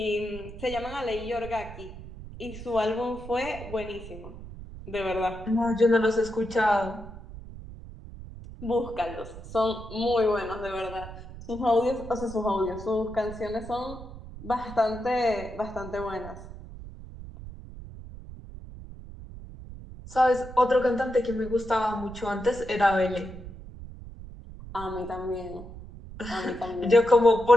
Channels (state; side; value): noise; right; rumble, 13 dB below the sound